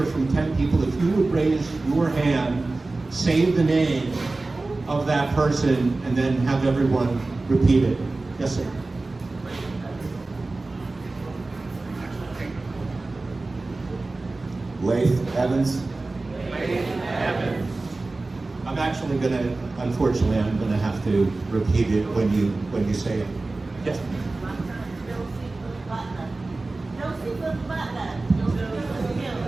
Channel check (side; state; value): left; quieter; 3.3 dB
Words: from 10 people. If you would raise your hand, say the name of that person, and then have everyone repeat it. Yes, sir. Laith Evans. I'm actually unfortunately, I'm gonna have to repeat it when you say it. Yes.